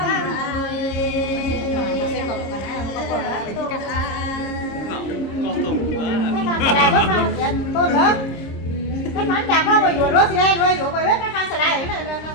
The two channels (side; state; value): right; late; 26 ms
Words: lại bớt ra tôn nữa cái món chả có mà dùa đó xe rồi dùa bài biết cái khăn lại này là